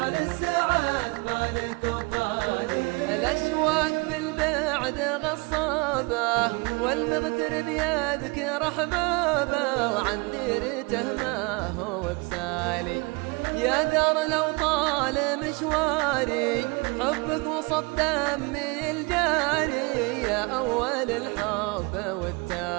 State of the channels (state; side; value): quieter; left; 27.7 dB